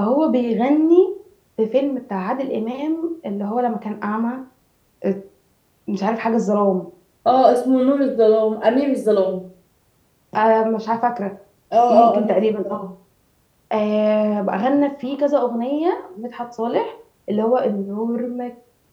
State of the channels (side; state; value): both; identical; correlation 1.00